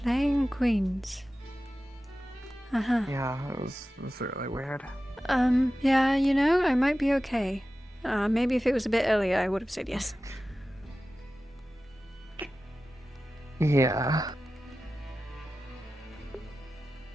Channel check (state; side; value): normal; both; correlation 0.95